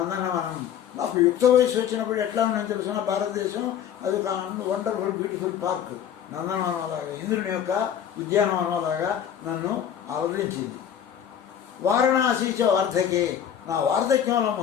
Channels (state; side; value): quieter; right; 9.2 dB